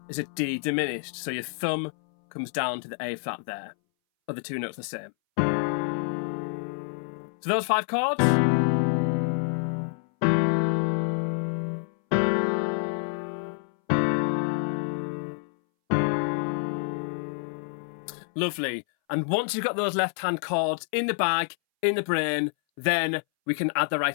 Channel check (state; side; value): silent; right; 60 dB below the other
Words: is a D diminished. So your thumb comes down to the A flat there. Other 2 notes the same. So those 5 chords. Lovely. And once you've got those left hand chords in the bag, in the brain, then we can add the